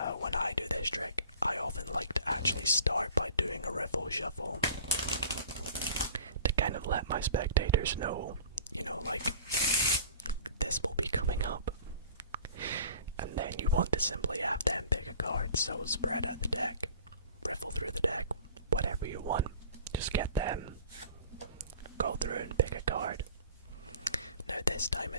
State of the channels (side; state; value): both; inverted; correlation -0.44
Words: When I do this trick, I often like to actually start by doing a riffle shuffle to kind of let my spectators know, like, this will be coming up. And then you want to simply have them pick a card, so spread out the deck, riffle through the deck, whatever you want. Just get them, go through and pick a card. Now this time